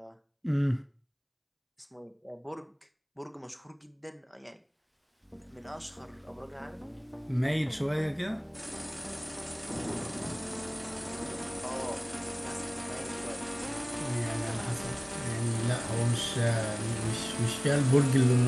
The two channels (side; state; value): both; identical; correlation 1.00